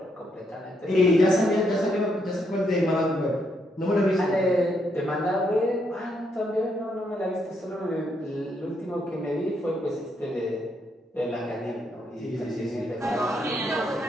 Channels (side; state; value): both; normal; correlation 0.76